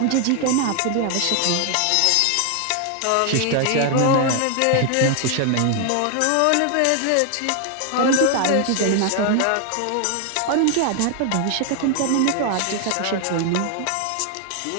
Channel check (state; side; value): different; both; correlation 0.00